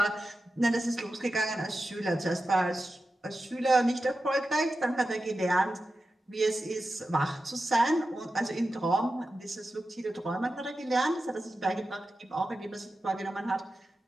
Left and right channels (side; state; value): both; normal; correlation 0.92